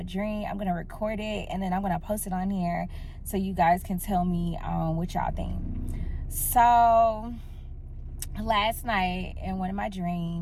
dream I'm gonna record it and then I'm gonna post it on here so you guys can tell me what y'all think. So last night in one of my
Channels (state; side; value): identical; both; correlation 1.00